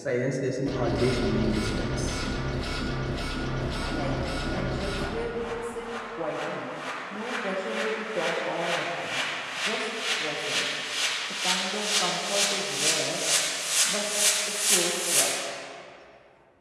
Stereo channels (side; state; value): both; identical; correlation 1.00